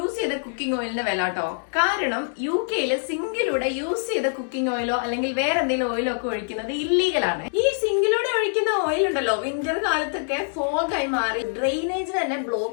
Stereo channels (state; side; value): silent; right; digital silence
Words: ചെയ്ത കുക്കിംഗ് ഓയിലിന്റെ വില കേട്ടോ. കാരണം UK-യില് സിങ്കിലൂടെ യൂസ് ചെയ്ത കുക്കിംഗ് ഓയിലോ അല്ലെങ്കിൽ വേറെ എന്തെങ്കിലും ഓയിലോ ഒക്കെ ഒഴിക്കുന്നത് ഇല്ലീഗലാണ്. ഈ സിങ്കിലൂടെ ഒഴിക്കുന്ന ഓയിൽ ഉണ്ടല്ലോ വിന്റർ കാലത്തൊക്കെ ഫോഗായി മാറി ഡ്രെയിനേജിന് തന്നെ